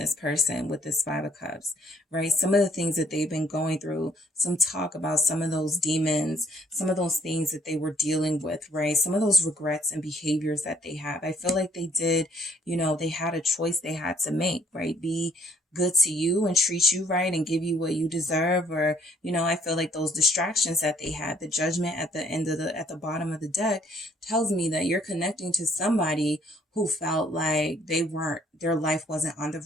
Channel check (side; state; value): both; normal; correlation 0.64